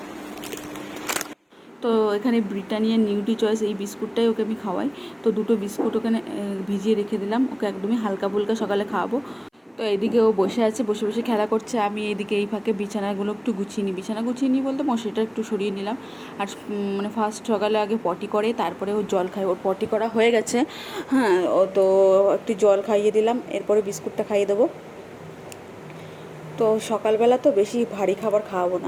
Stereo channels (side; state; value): both; identical; correlation 1.00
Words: তো এখানে ব্রিটানিয়া নিউট্রি চয়েস এই বিস্কুটটাই ওকে আমি খাওয়াই। তো দুটো বিস্কুট ওখানে ভিজিয়ে রেখে দিলাম, ওকে একদমই হালকা ফুলকা সকালে খাওয়াবো। তো এইদিকে ও বসে আছে, বসে বসে খেলা করছে। আমি এইদিকে এই ফাঁকে বিছানাগুলো একটু গুছিয়ে নিই। বিছানা গুছিয়ে নিই বলতে মশারিটা একটু সরিয়ে নিলাম। আর মানে ফার্স্ট সকালে আগে পটি করে, তারপরে ও জল খায়। ওর পটি করা হয়ে গেছে, হ্যাঁ। ও তো একটু জল খাইয়ে দিলাম, এরপরে বিস্কুটটা খাইয়ে দেবো। তো সকালবেলা তো বেশি ভারী খাবার খাওয়াবো